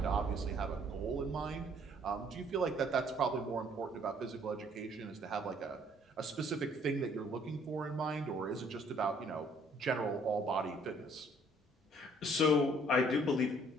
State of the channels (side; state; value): both; normal; correlation 0.61